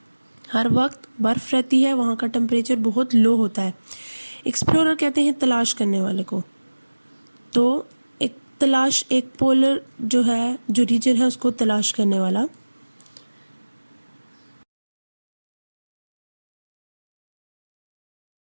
हर वक्त बर्फ़ रहती है, वहाँ का टेम्परेचर बहुत लो होता है. एक्सप्लोरर कहते हैं तलाश करने वाले को. तो एक पोलर जो है, जो रीजन है, उसको तलाश करने वाला.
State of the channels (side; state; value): both; inverted; correlation -1.00